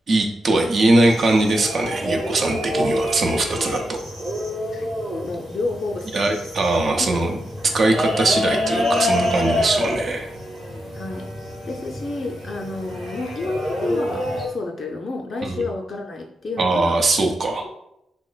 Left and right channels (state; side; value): normal; both; correlation 0.86